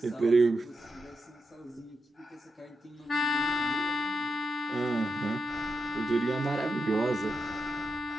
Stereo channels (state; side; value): normal; both; correlation 0.85